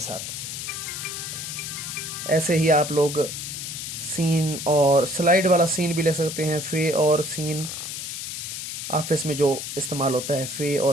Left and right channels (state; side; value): noise; left; hiss, 6 dB below the sound